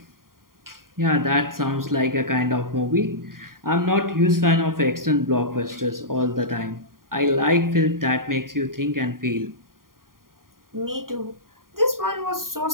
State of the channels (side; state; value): left; late; 0.91 ms